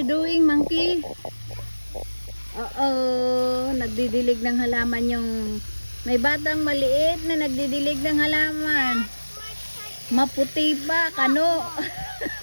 doing, monkey? Oo, nagdidilig ng halaman yung... May batang maliit na nagdidilig ng halaman. Maputi pa, Kano.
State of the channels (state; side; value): inverted; both; correlation -1.00